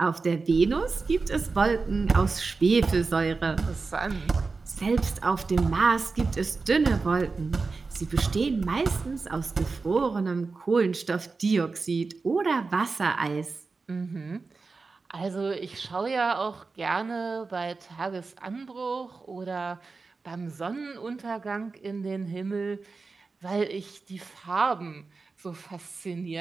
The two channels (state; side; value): quieter; left; 4.2 dB